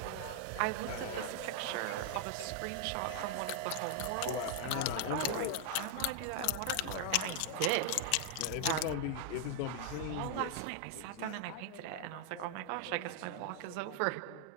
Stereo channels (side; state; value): both; different; correlation 0.00